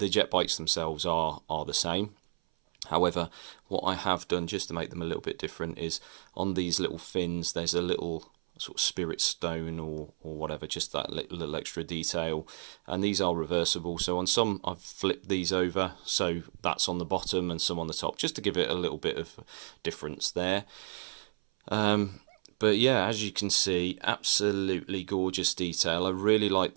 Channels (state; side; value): silent; left; 57 dB below the other